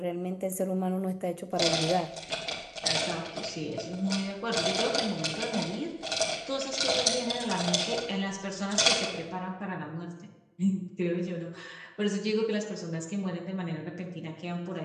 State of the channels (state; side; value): identical; both; correlation 1.00